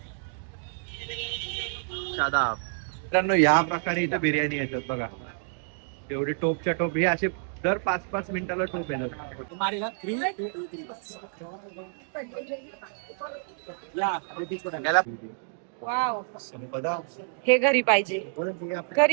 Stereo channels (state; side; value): silent; left; digital silence